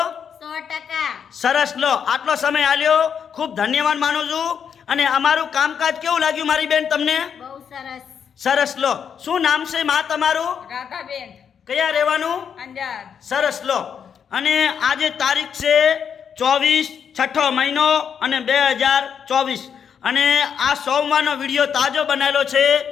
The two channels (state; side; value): quieter; right; 7.5 dB